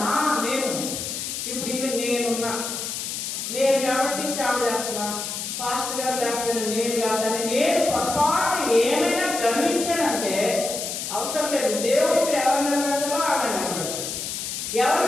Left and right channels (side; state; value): left; noise; hiss, 5 dB below the sound